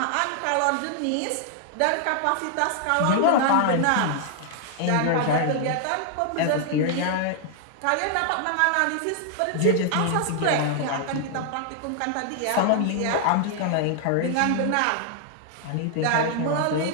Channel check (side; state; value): both; different; correlation 0.00